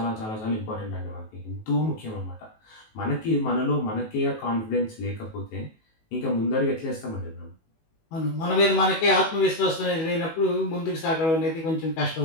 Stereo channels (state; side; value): late; right; 19 ms